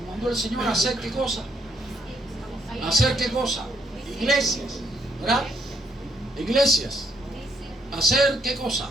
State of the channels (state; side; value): normal; both; correlation 0.72